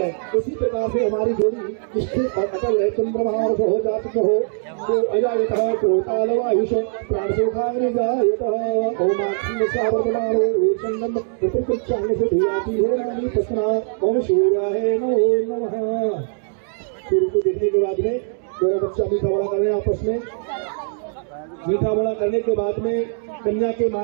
उसी प्रकार से हमारी जोड़ी स्थिर और अटल है। चंद्रमा हो जात हो तो अजायतः कोतालो आयुष प्राणसोखानि जायतः ओमाक्षी सावर्तमानो वेशंगम प्रकृतिचांग से धियाति हो नानी तस्मा ओम सूर्याय नमो नमः। सूर्य को देखने के बाद में दोनों बच्चा मीठा बड़ा कर रहे हैं आपस में। मीठा बड़ा करने के बाद में कन्या के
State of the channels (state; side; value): silent; left; 65 dB below the other